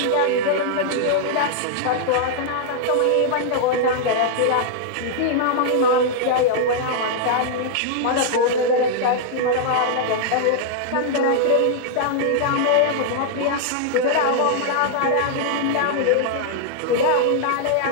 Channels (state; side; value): different; both; correlation -0.01